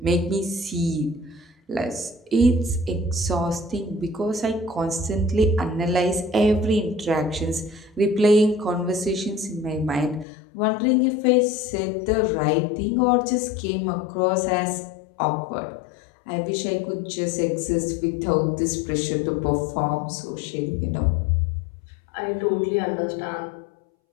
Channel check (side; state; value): right; drops out; at 10.2 s